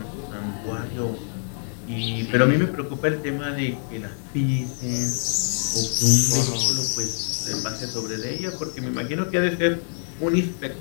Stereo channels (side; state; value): right; silent; 62 dB below the other